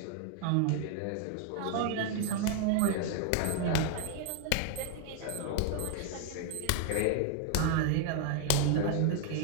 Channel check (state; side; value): different; both; correlation 0.00